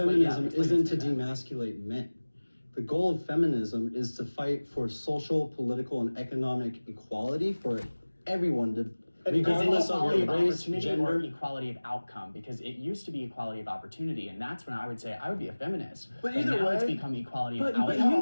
feminism explain isn't to that. demasculate men. The goal of feminism is to fight for social, political, and economic equality for everyone, regardless of equality your of race, opportunity or gender. equality of outcome, because it used to be equality of opportunity, and that's when I would say I would be a feminist. But either now way- it's become equality But, of but,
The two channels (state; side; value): inverted; both; correlation -1.00